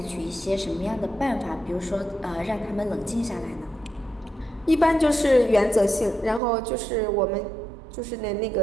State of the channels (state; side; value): drops out; left; at 6.4 s